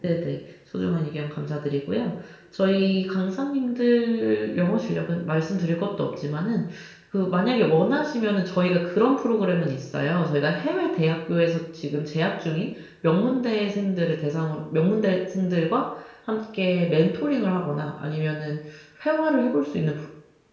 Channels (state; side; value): identical; both; correlation 1.00